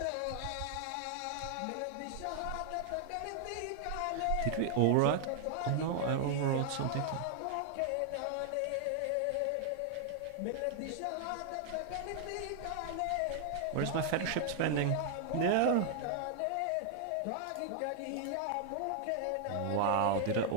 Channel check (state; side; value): different; both; correlation 0.00